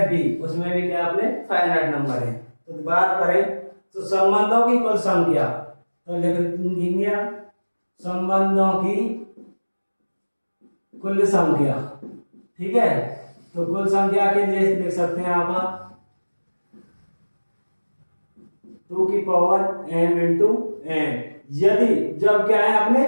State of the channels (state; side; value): inverted; both; correlation -1.00